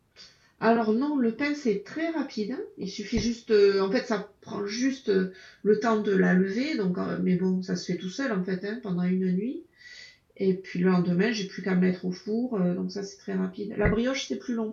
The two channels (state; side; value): identical; both; correlation 1.00